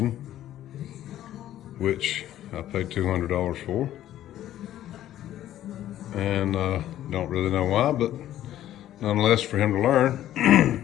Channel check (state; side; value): quieter; right; 12.6 dB